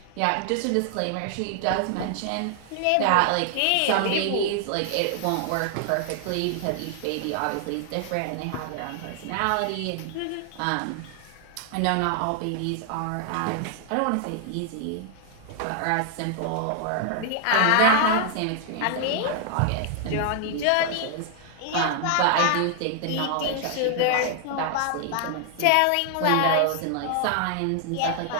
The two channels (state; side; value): different; both; correlation 0.00